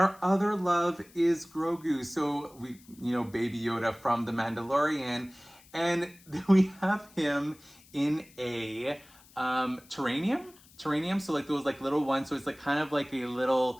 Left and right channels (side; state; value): left; noise; hiss, 25 dB below the sound